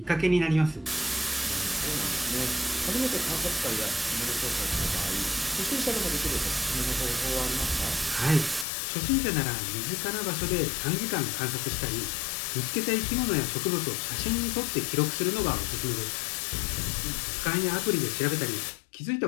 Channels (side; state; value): right; drops out; at 8.7 s